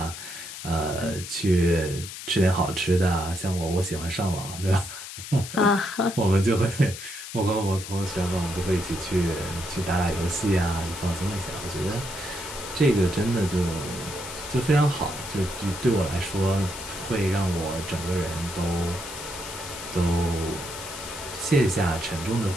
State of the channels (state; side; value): noise; left; hiss, 10 dB below the sound